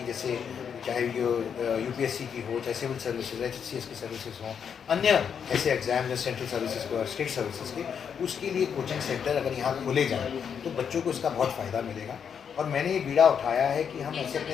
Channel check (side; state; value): right; quieter; 7.4 dB